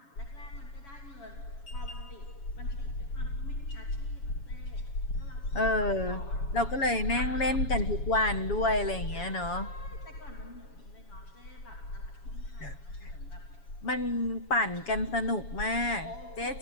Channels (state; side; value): late; right; 7.1 ms